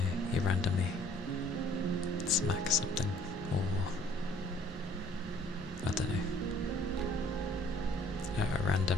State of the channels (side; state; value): both; normal; correlation 0.58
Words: you randomly smack something, or, I don't know, a random